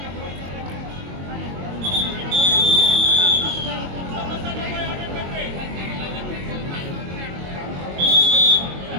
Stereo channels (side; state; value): left; late; 22 ms